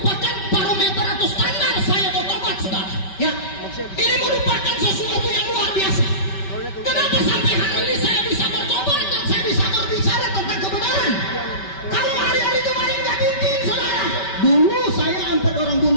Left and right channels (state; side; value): late; right; 5.2 ms